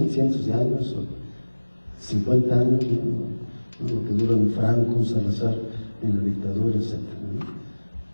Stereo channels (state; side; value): inverted; both; correlation -1.00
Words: de años, 50 años, ¿no? Lo que dura un Franco, un Salazar en la dictadura, etc., ¿no?